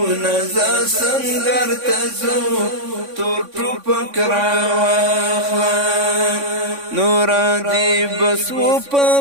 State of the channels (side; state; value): left; late; 3.5 ms